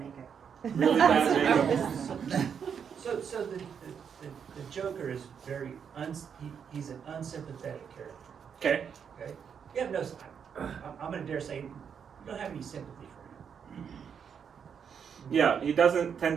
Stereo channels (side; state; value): left; quieter; 7.3 dB